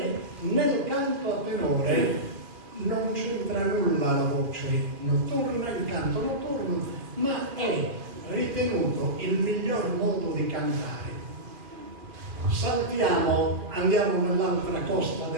nel canto a tenore non c'entra nulla la voce notturna, il canto notturno, ma è ritenuto il miglior modo di cantare. Saltiamo, andiamo nell'altra costa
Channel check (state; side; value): late; left; 2.5 ms